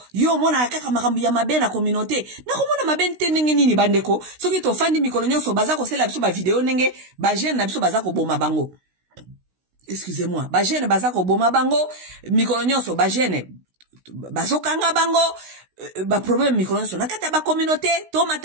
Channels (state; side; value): late; left; 16 ms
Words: yo mona kaka makambo ya mabe na communauté. Na komona mabe nte ndenge nini bandeko. Soki to fandi mikolo nyonso baza ko sela biso ba video ndenge ba jeune na biso baza ko boma bango. Excusez-moi. Ba jeune baza ko boma bango, mikolo nyonso ba jeune bazokanga bango, ba problème mikolo nyonso nakata ba communauté, to